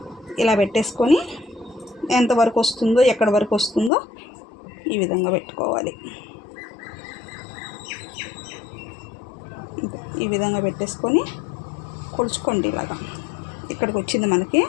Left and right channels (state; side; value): drops out; right; at 3.9 s